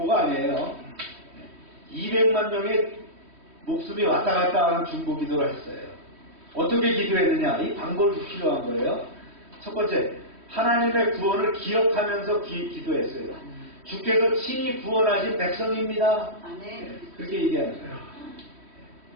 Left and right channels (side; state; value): left; late; 3.1 ms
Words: 아니에요. 200만 명의 목숨이 왔다 갔다 하는 중보기도를 했어요. 어떻게 기도했느냐? 이 방법이 필요한 거예요. 첫 번째, 하나님의 구원을 기억하면서 기도했어요. 주께서 친히 구원하신 백성입니다. 그렇게 얘기하는 거예요.